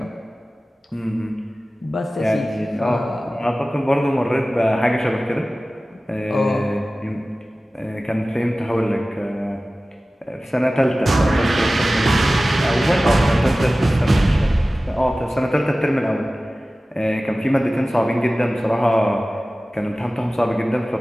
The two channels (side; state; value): both; normal; correlation 0.97